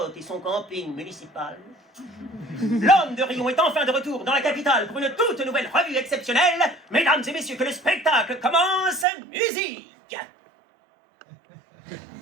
et son camping municipal. L'homme de Rion est enfin de retour dans la capitale pour une toute nouvelle revue exceptionnelle. Mesdames et messieurs, que le spectacle commence, musique!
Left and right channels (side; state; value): left; drops out; at 9.1 s